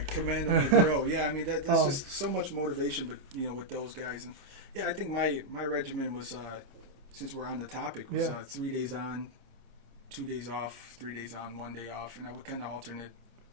command them to grow. Yeah, I mean that's just so much motivation, but with those guys, and yeah, I think my regimen was since we're on the topic was 3 days on, 2 days off, 3 days on, 1 day off, and I would kind of alternate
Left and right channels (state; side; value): late; left; 28 ms